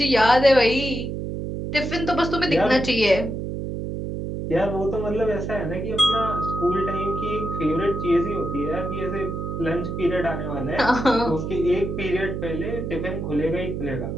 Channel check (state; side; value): noise; right; hum, 4 dB below the sound